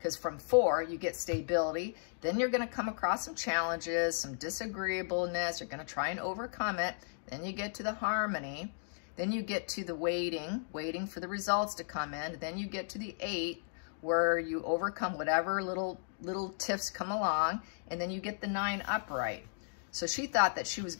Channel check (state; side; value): silent; right; digital silence